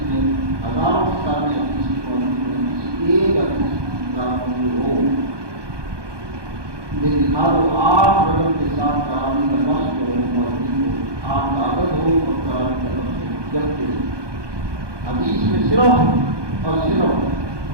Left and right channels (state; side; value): late; left; 1.2 ms